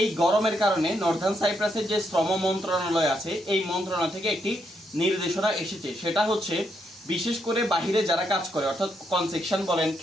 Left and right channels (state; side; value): normal; both; correlation 0.78